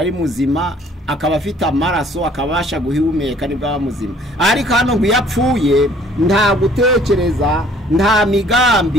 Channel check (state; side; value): normal; both; correlation 0.57